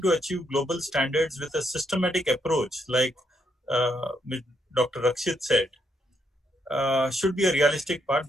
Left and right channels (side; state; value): both; normal; correlation 0.76